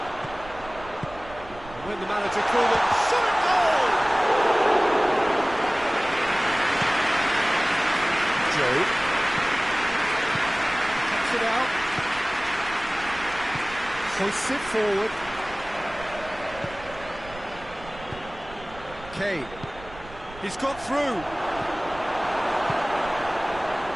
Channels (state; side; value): noise; right; rumble, 18 dB below the sound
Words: And when the manager called it, shot it goal! Joe. Cuts it out. Hoists it forward. Kane. He's got through.